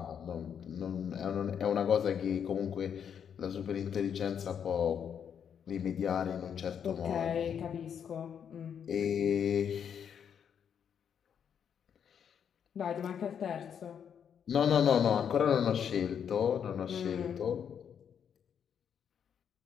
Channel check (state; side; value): quieter; right; 8.0 dB